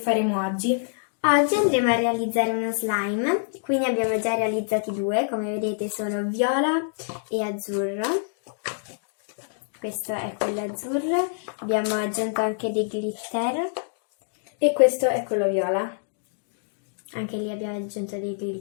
oggi. Oggi andremo a realizzare uno slime, quindi abbiamo già realizzati due, come vedete sono viola e azzurro. Questo è quello azzurro, abbiamo aggiunto anche dei glitter. E questo è quello viola. Anche lì abbiamo aggiunto dei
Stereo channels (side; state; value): right; silent; digital silence